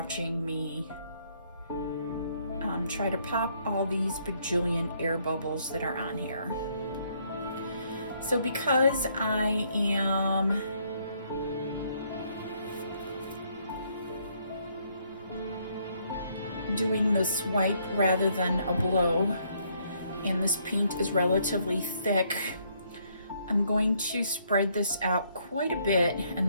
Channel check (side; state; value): both; inverted; correlation -0.69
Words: me try to pop all these bajillion air bubbles that are on here. So because I am doing the swipe rather than a blow, and this paint is relatively thick, I'm going to spread this out quite a bit